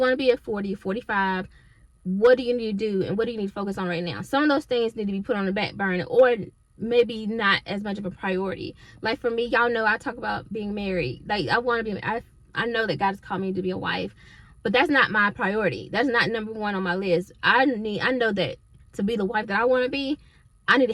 to be at 40, 45, what do you need to do and what do you need to focus on right now? Some of those things need to be put on the back burner, or maybe not as much of a priority. Like for me, y'all know I talk about being married. Like I want to be, I know that God has called me to be a wife, but that's not my priority. That's not number one on my list. I know that to be the wife that I want to be, I need to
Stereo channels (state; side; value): identical; both; correlation 1.00